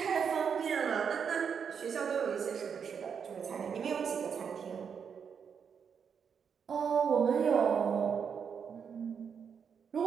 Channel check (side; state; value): left; quieter; 6.9 dB